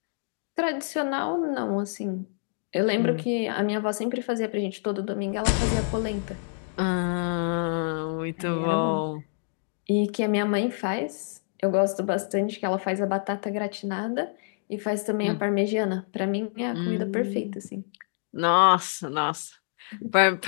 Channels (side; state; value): right; silent; digital silence